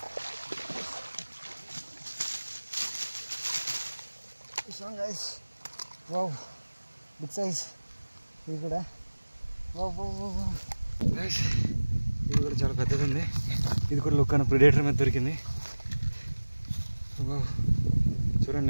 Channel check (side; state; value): both; inverted; correlation -1.00